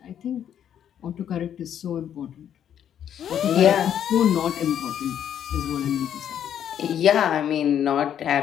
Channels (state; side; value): quieter; right; 9.6 dB